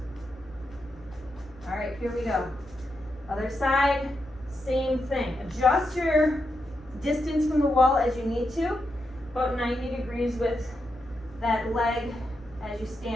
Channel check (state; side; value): noise; left; hum, 23 dB below the sound